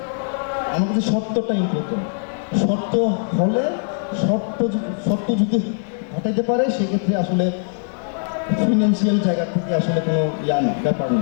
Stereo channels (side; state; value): right; silent; digital silence